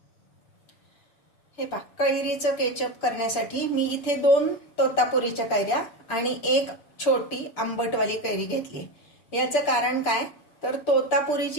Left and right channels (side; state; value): right; late; 6.8 ms